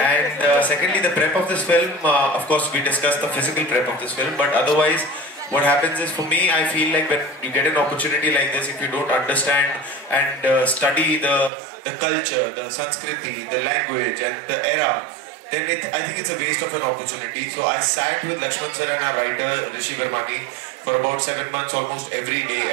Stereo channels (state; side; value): drops out; left; at 11.5 s